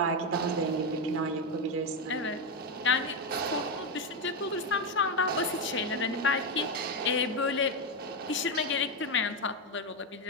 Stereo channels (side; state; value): both; normal; correlation 0.08